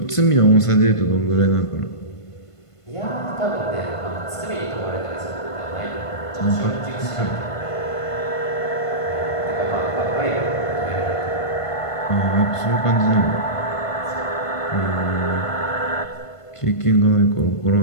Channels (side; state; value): right; late; 1.5 ms